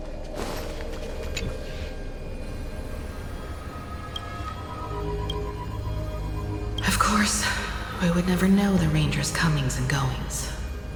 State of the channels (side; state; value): both; identical; correlation 1.00